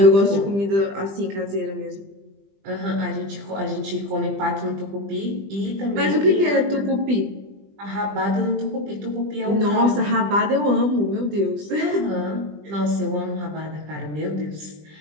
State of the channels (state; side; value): late; left; 20 ms